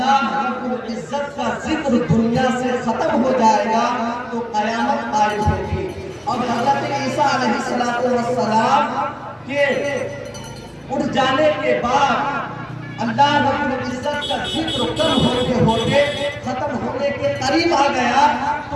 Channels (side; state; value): both; identical; correlation 1.00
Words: رب العزت کا ذکر دنیا سے ختم ہو جائے گا تو قیامت قائم ہوگی، اور حضرت عیسیٰ علیہ السلام کے اٹھ جانے کے بعد اللہ رب العزت کا ذکر کم ہوتے ہوتے ختم ہونے کے قریب آ گیا